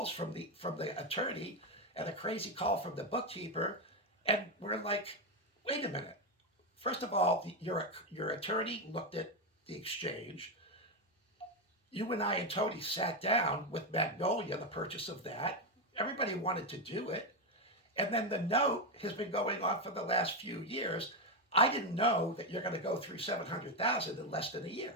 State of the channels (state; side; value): normal; both; correlation 0.08